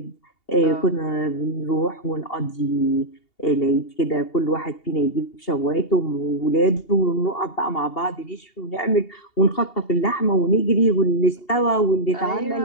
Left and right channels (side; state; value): right; late; 2.8 ms